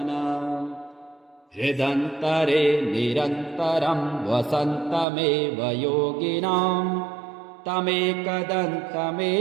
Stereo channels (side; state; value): left; drops out; at 5.1 s